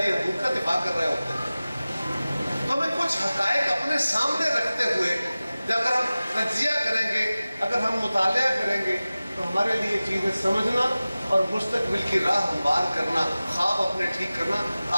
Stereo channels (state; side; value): inverted; both; correlation -0.97